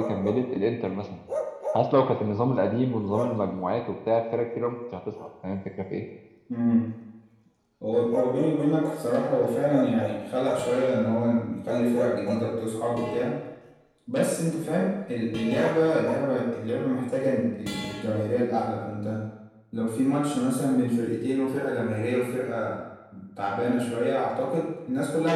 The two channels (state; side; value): identical; both; correlation 1.00